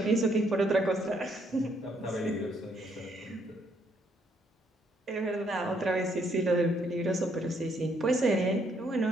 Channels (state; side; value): normal; both; correlation 0.71